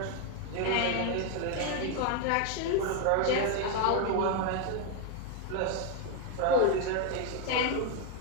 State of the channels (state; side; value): different; both; correlation 0.01